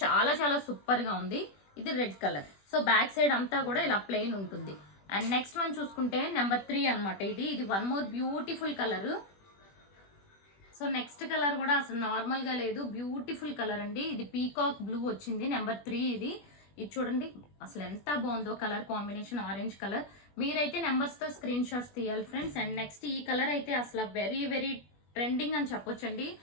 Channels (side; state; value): right; late; 21 ms